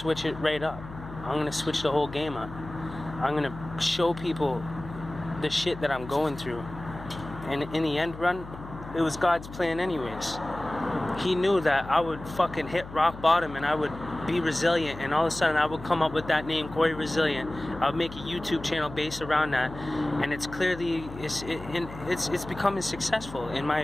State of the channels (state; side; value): noise; left; hum, 13 dB below the sound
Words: it right up. I'm gonna switch the whole game up. I'm gonna show people the shit that I'm going through. And in the end run, it was God's plan anyways. He knew that I would fucking hit rock bottom and I would be resilient, and all of a sudden I would come up with that name, Cory Resilient. I would make a YouTube channel based around that, and it's clearly it's becoming successful in my